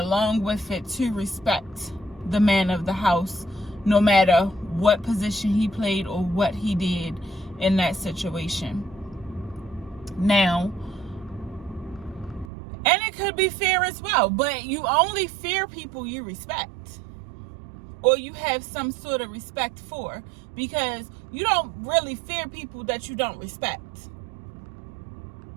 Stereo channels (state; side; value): drops out; left; at 12.5 s